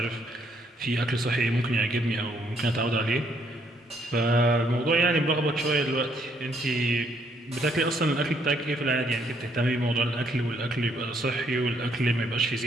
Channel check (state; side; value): normal; both; correlation 0.69